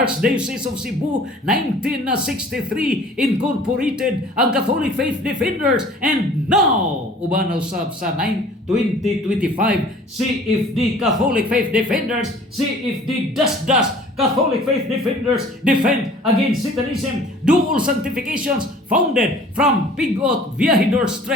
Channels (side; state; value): both; normal; correlation 0.49